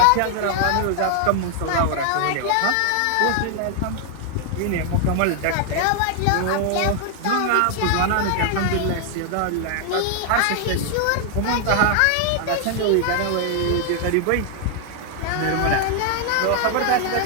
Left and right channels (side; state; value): both; different; correlation 0.00